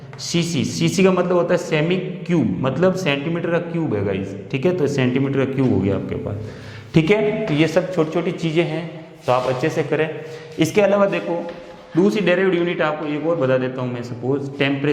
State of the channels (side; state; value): both; identical; correlation 1.00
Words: सीसी का मतलब होता है सेमी क्यूब, मतलब सेंटीमीटर का क्यूब है गाइस, ठीक है। तो सेंटीमीटर का क्यूब हो गया आपके पास, ठीक है। तो ये सब छोटी छोटी चीज़ें हैं, तो आप अच्छे से करें। इसके अलावा देखो दूसरी डेरिवेटिव यूनिट आपको एक और बता देता हूँ मैं, सपोज